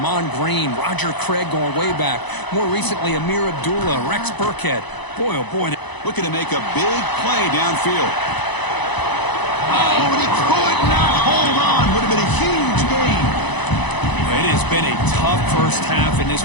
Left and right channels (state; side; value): late; right; 1.0 ms